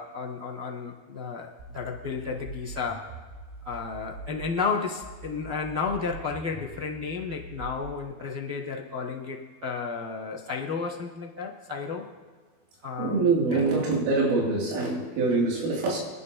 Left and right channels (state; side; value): late; left; 12 ms